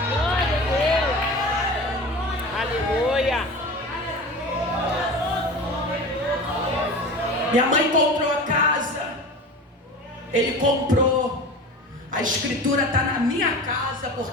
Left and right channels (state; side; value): normal; both; correlation 0.34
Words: Glória a Deus. Aleluia. Minha mãe comprou a casa, ele comprou. A escritura está na minha casa,